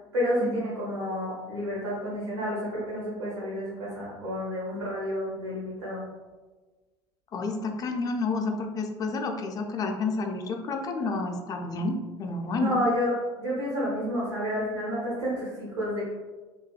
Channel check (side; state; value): both; normal; correlation 0.50